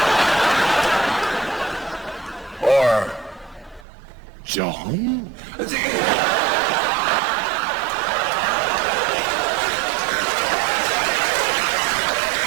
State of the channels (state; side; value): drops out; left; at 3.9 s